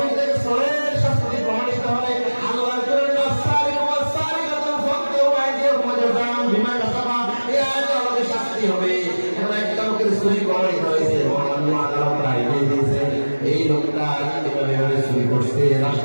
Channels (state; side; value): inverted; both; correlation -1.00